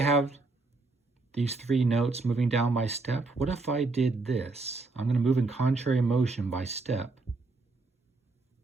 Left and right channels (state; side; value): quieter; left; 3.6 dB